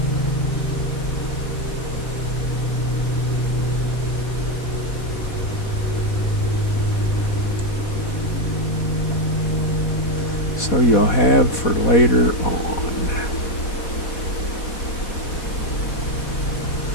So you'll have for later on.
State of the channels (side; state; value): right; late; 4.1 ms